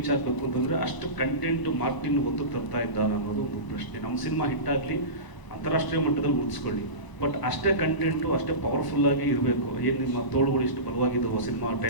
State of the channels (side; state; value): right; late; 1.0 ms